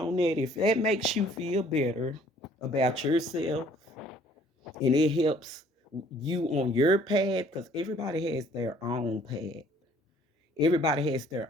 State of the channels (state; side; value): normal; both; correlation 0.58